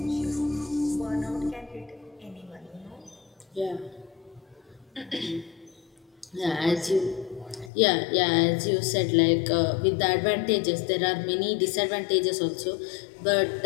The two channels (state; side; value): drops out; right; at 7.7 s